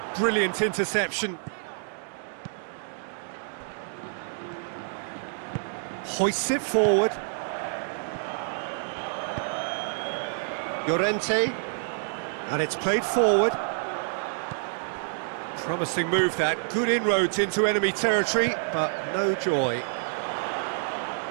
brilliant interception. Hoists it forward. Llorente, and it's played forward. Promising move that, good inroads into enemy territory, but no joy.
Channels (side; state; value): left; silent; digital silence